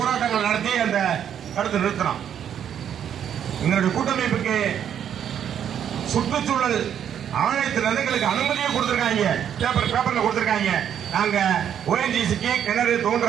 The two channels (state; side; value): quieter; left; 9.2 dB